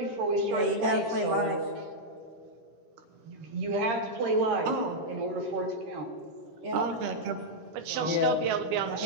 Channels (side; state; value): left; late; 13 ms